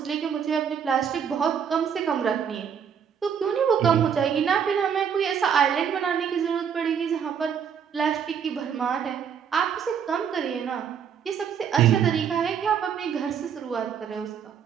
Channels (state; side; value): quieter; left; 7.6 dB